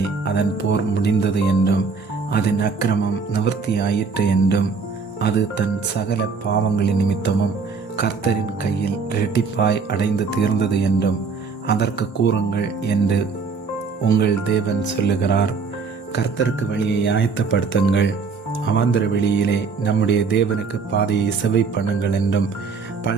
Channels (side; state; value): left; quieter; 5.0 dB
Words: அதன் போர் முடிந்தது என்றும் அதன் அக்கிரமம் நிவர்த்தியாயிற்று என்றும் அது தன் சகல பாவங்களின் நிமித்தமும் கர்த்தரின் கையில் இரட்டிப்பாய் அடைந்து தீர்ந்தது என்றும் அதற்கு கூறுங்கள் என்று உங்கள் தேவன் சொல்லுகிறார். கர்த்தருக்கு வழியை ஆயத்தப்படுத்துங்கள், அவாந்தர வெளியிலே நம்முடைய தேவனுக்கு பாதையை செவை பண்ணுங்கள் என்றும்